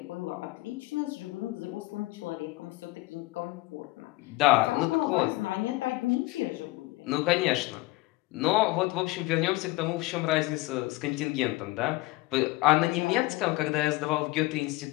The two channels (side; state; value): right; quieter; 20.7 dB